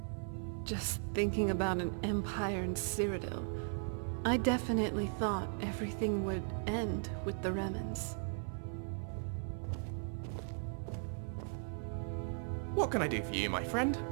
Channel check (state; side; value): silent; left; 53 dB below the other